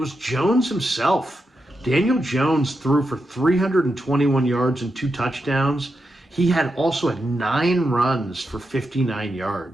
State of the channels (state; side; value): normal; both; correlation 0.86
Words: Jones himself. Daniel Jones threw for 321 yards and 2 touchdowns. He also had 9 runs for 59